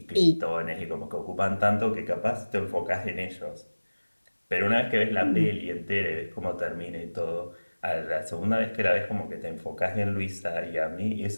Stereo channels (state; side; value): inverted; both; correlation -1.00